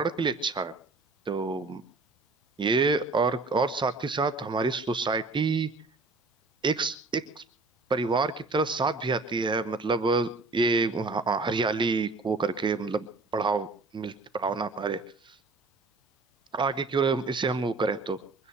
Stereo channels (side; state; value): left; quieter; 3.6 dB